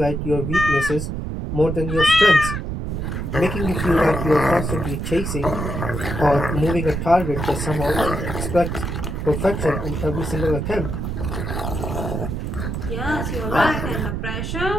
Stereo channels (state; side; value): noise; right; rumble, 3 dB below the sound